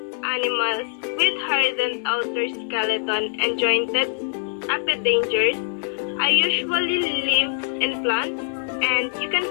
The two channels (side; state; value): right; silent; digital silence